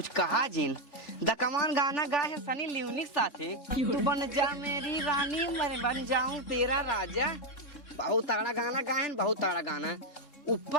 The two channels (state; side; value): late; right; 3.6 ms